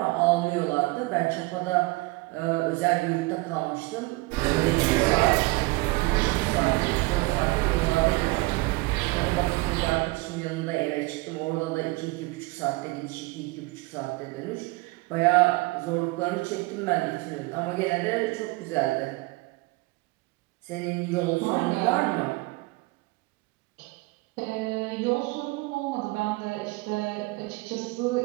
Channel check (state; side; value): quieter; left; 23.4 dB